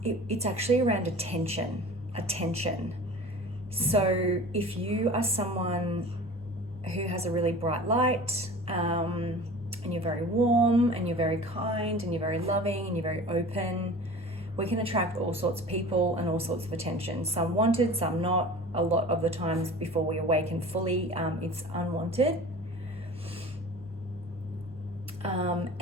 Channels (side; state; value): both; normal; correlation 0.40